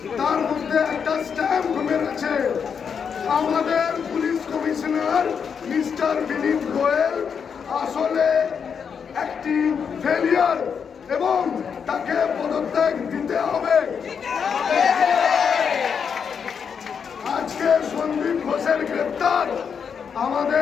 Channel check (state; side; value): quieter; right; 6.7 dB